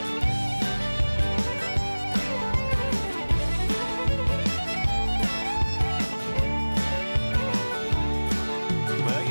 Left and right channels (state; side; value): inverted; both; correlation -1.00